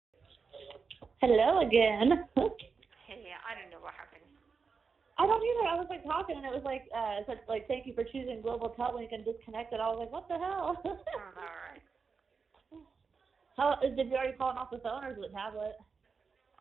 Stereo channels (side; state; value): left; quieter; 5.2 dB